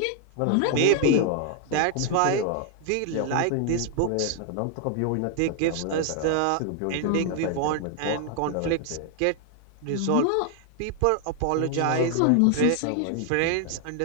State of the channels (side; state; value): both; different; correlation 0.00